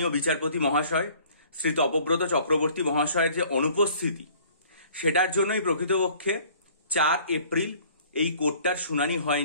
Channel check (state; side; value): inverted; both; correlation -0.54